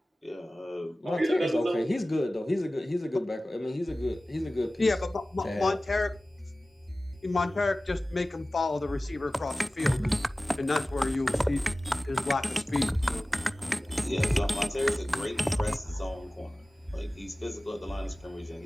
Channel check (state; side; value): normal; both; correlation 0.97